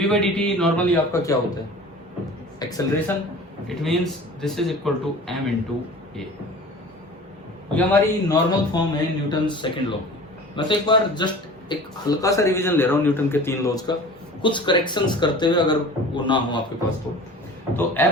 बाई dt नॉर्मली आपका क्या होता है? Acceleration. It means this is equal to m into a. ये हमारी नॉर्मल फॉर्म है न्यूटन सेकंड लॉ। मैं तो एक बार जस्ट एक हल्का सा रिवीजन ले रहा हूँ न्यूटन के 3 लॉज का, कुछ करेक्शंस करते हुए, अगर वो ना हो आपके पास तो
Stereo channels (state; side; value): normal; both; correlation 0.41